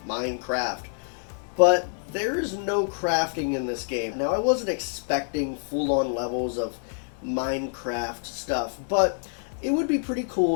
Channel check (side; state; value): right; silent; 60 dB below the other